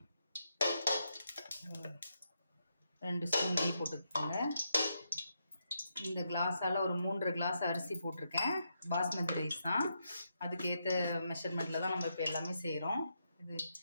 2 ஸ்பூன் நெய் போட்டுக்கோங்க. இந்த கிளாஸால் ஒரு 3 கிளாஸ் அரிசி போட்டிருக்கேன். பாஸ்மதி ரைஸ் தான். அதுக்கேற்ற மெஷர்மெண்ட்டில் தான் நம்ம இப்போ எல்லாமே செய்கிறோம். இது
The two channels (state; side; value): inverted; both; correlation -0.81